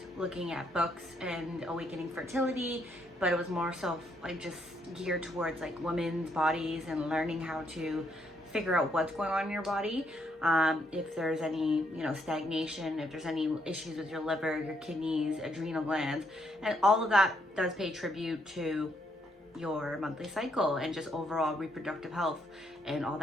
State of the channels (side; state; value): both; normal; correlation 0.74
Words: looking at books and awakening fertility, but it was more so like just geared towards like women's bodies and learning how to figure out what's going on in your body. If there's any, you know, stagnation, if there's any issues with your liver, your kidneys, adrenal glands, and all of that does pay tribute to your monthly cycle and just overall reproductive health and all